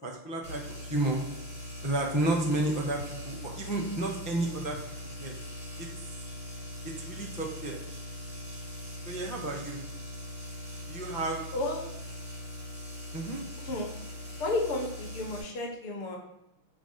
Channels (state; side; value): late; right; 5.9 ms